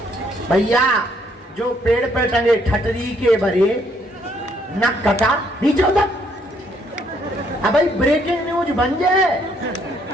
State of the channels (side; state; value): both; normal; correlation 0.69